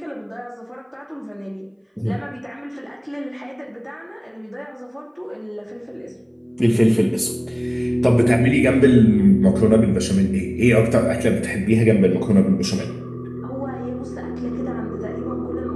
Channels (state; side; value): identical; both; correlation 1.00